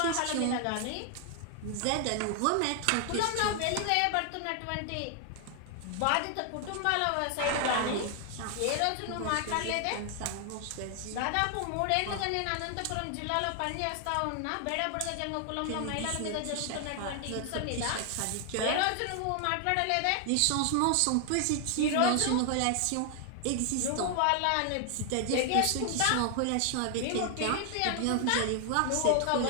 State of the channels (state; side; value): different; both; correlation 0.00